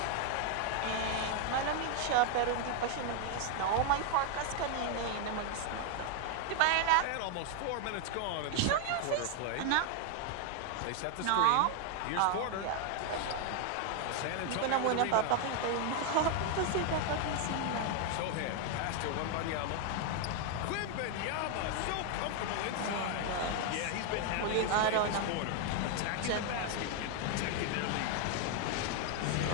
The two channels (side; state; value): both; different; correlation 0.01